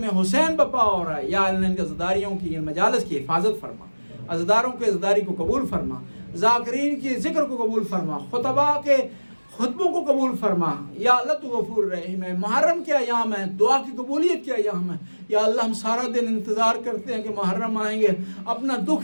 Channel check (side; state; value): both; inverted; correlation -1.00